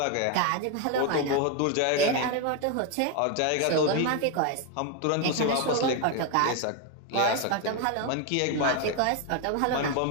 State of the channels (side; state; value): both; different; correlation 0.01